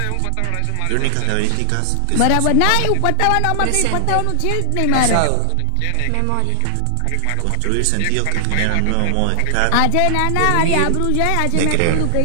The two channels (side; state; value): both; different; correlation 0.00